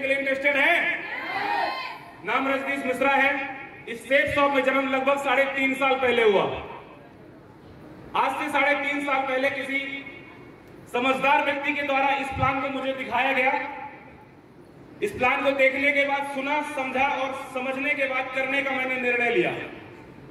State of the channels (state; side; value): identical; both; correlation 1.00